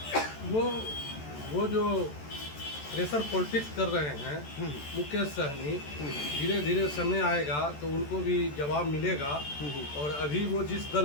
वो जो प्रेशर पॉलिटिक्स कर रहे हैं मुकेश सहनी, धीरे धीरे समय आएगा तो उनको भी जवाब मिलेगा। और अभी वो जिस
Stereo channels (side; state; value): right; late; 14 ms